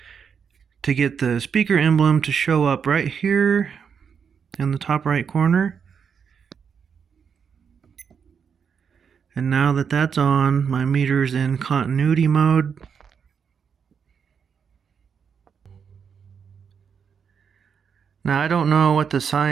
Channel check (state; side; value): quieter; left; 6.8 dB